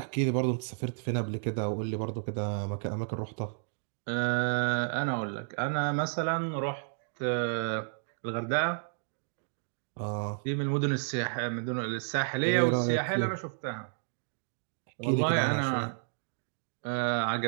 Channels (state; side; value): silent; left; digital silence